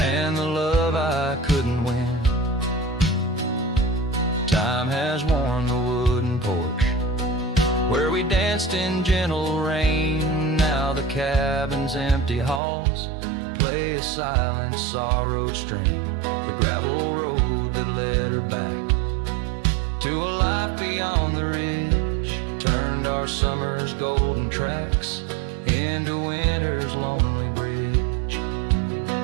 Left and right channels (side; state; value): left; drops out; at 12.6 s